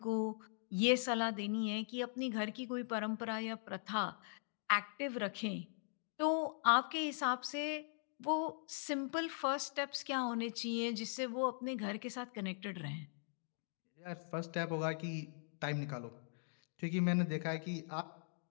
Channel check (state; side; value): silent; right; digital silence